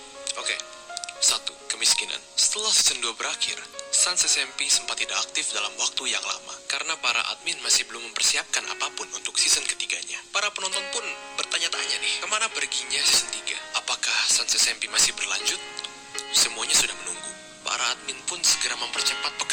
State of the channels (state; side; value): identical; both; correlation 1.00